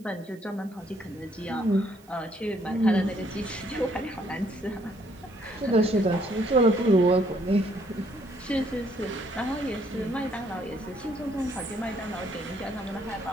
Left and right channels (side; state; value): right; noise; hiss, 29 dB below the sound